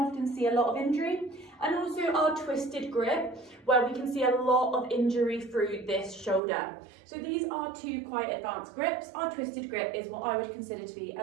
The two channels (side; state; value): left; drops out; at 6.4 s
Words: see a lot of injury, and also our twisted grip, where we can see a lot of injury through this shoulder. So these are two quite advanced grips. Our twisted grip is what I would consider to be